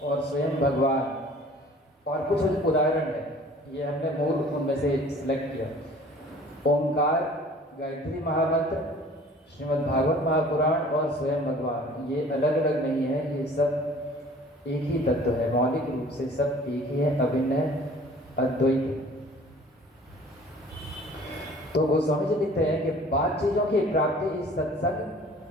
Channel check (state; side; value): normal; both; correlation 0.49